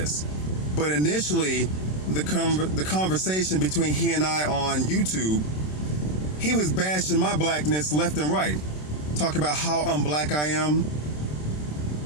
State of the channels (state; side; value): late; right; 27 ms